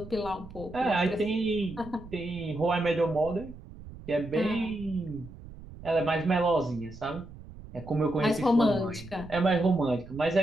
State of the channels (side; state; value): right; noise; rumble, 16 dB below the sound